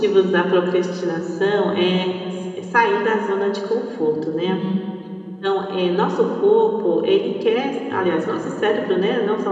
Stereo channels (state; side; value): identical; both; correlation 1.00